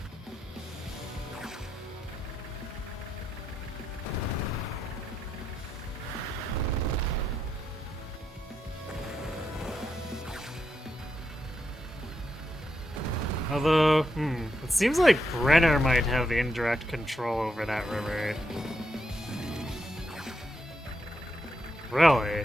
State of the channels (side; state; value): both; normal; correlation 0.82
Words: Although, it seems like Brenner might have indirect control over that river. Really?